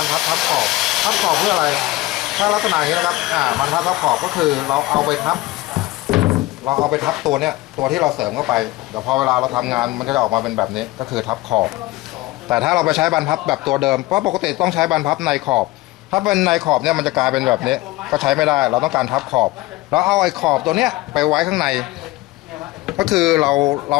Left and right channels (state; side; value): quieter; right; 19.4 dB